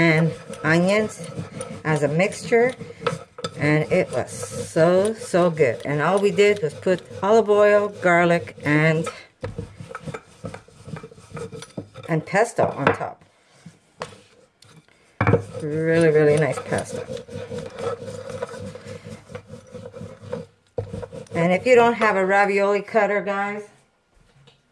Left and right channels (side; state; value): both; identical; correlation 1.00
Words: onions as a mixture. And it was so good. And all we did was put olive oil, garlic, and pesto on top. Really nice pasta. And if you don't have a ravioli cutter, guys,